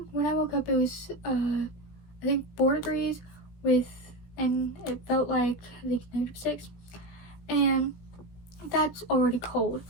when I woke up, it was I think 4 degrees and it felt like I think -6, and that's already cold.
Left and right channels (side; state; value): right; late; 17 ms